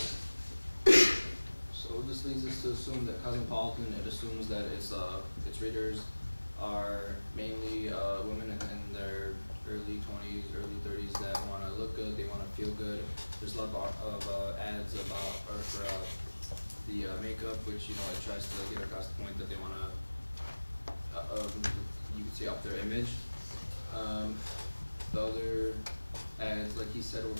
So this leads us to assume that Cosmopolitan, it assumes that its readers are mainly women in their early 20s, early 30s that want to look good, they want to feel good. There's a lot of ads for the makeup, which it tries to get across the point that they want to, you could say, up their image. The other ads, like he said, were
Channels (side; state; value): both; inverted; correlation -1.00